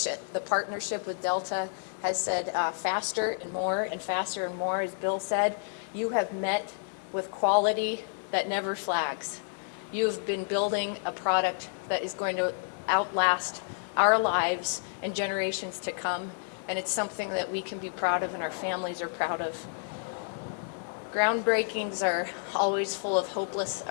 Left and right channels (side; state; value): right; silent; digital silence